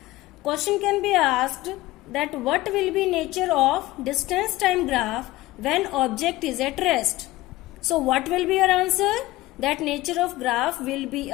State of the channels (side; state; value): right; quieter; 18.0 dB